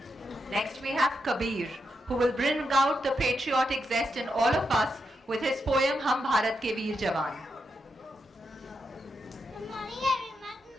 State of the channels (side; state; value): both; normal; correlation 0.84